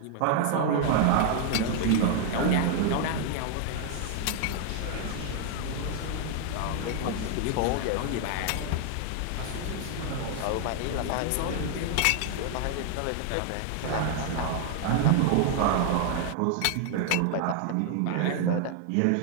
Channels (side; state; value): both; different; correlation 0.00